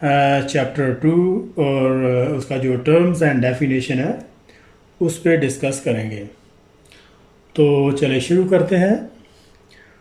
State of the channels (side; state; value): both; identical; correlation 1.00